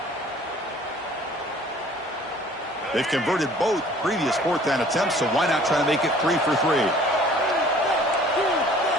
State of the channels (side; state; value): both; normal; correlation 0.52